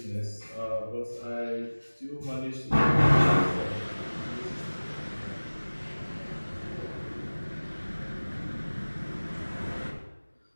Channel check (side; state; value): both; inverted; correlation -1.00